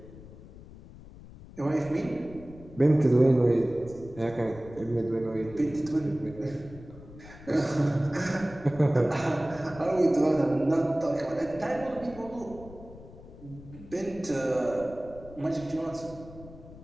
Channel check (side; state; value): left; noise; rumble, 18 dB below the sound